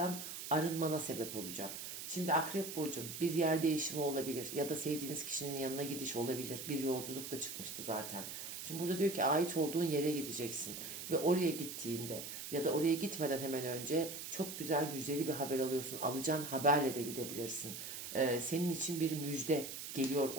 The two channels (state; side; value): noise; right; hiss, 8 dB below the sound